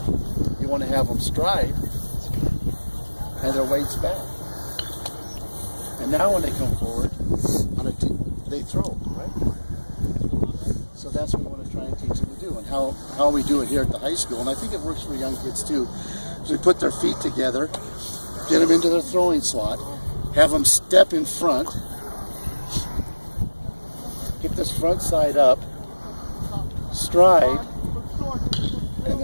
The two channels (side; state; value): both; inverted; correlation -1.00